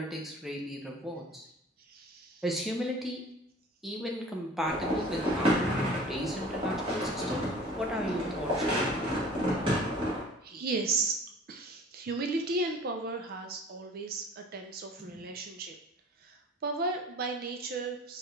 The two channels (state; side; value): normal; both; correlation 0.46